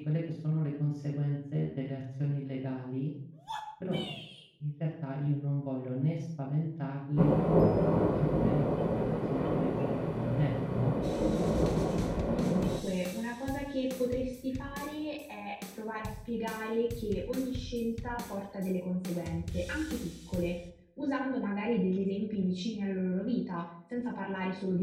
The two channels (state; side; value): identical; both; correlation 1.00